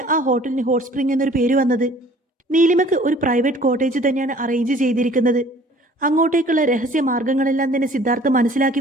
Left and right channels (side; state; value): both; normal; correlation 0.52